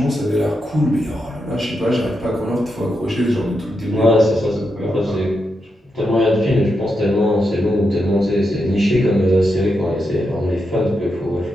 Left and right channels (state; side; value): normal; both; correlation 0.85